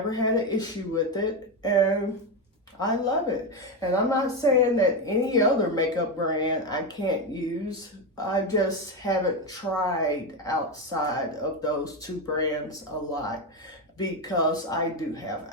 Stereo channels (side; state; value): both; normal; correlation 0.12